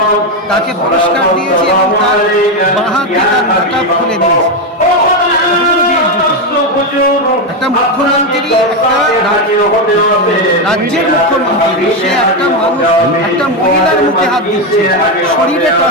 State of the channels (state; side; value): normal; both; correlation 0.09